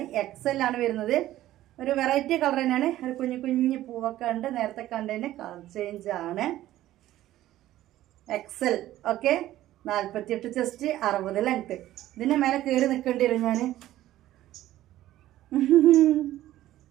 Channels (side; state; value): left; quieter; 14.3 dB